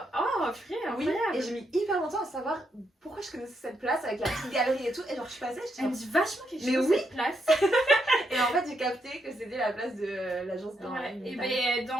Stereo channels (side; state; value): both; normal; correlation 0.79